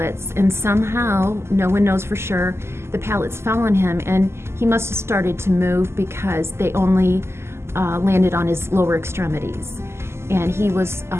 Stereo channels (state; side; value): late; left; 0.12 ms